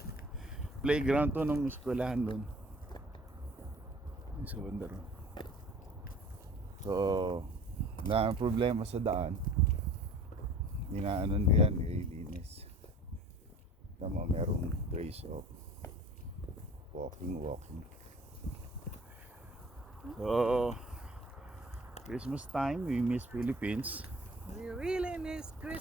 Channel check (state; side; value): normal; both; correlation 0.47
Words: Playground to nung eskwelahan doon. Sa Wonder. So, na problema sa daan. Inaanon yan, ililinis. Tama, merong place of walking. So, Christmas time, we miss Philippines. We really miss